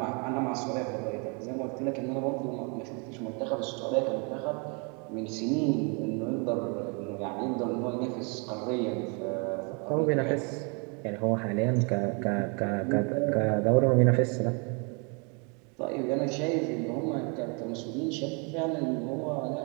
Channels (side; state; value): left; quieter; 34.5 dB